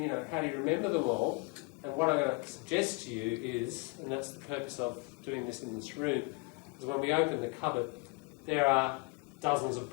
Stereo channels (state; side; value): quieter; right; 30.1 dB